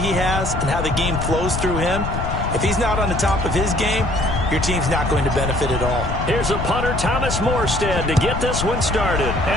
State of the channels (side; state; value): left; noise; rumble, 5 dB below the sound